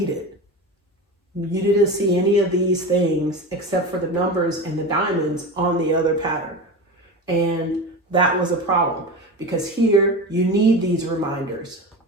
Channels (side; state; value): both; normal; correlation 0.26